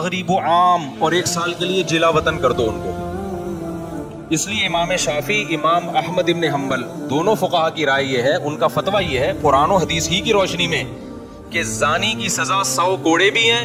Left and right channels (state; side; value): identical; both; correlation 1.00